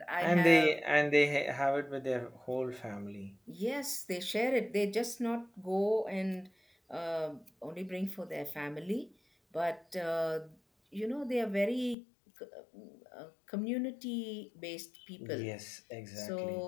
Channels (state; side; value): drops out; right; at 12.0 s